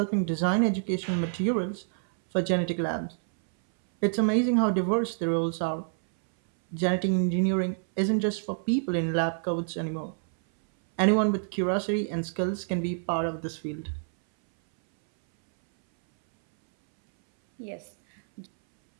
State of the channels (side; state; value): left; silent; 60 dB below the other